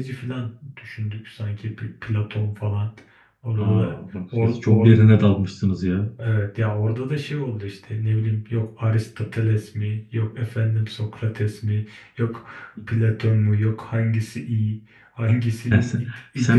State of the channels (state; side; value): identical; both; correlation 1.00